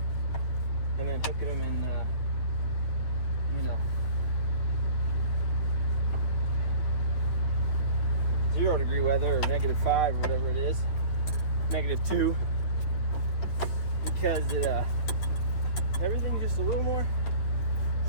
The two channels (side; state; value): right; late; 9.3 ms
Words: and then hooking them in, 0-degree weather or -5 or whatever it is, -2, because everything's just a little more